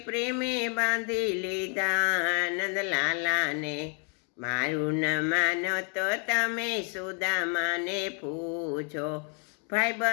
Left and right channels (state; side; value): quieter; right; 39.6 dB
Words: પ્રેમે બાંધી લીધા। નંદલાલાને મારું ન માનો તો તમે સુદામાને પૂછો,